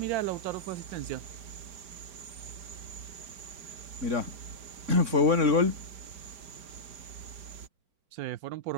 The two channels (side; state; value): left; late; 5.0 ms